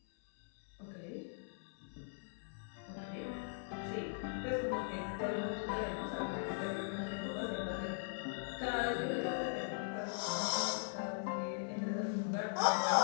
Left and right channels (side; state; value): right; silent; 51 dB below the other